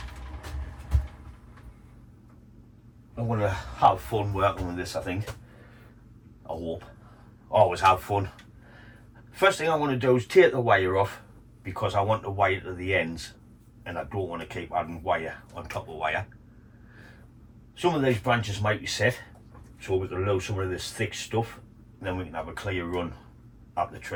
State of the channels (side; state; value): both; identical; correlation 1.00